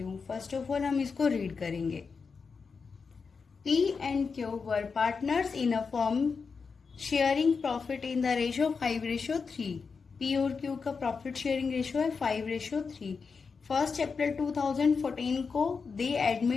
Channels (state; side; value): quieter; right; 5.2 dB